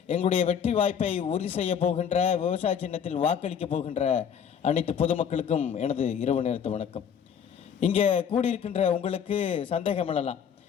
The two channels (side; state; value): right; quieter; 7.8 dB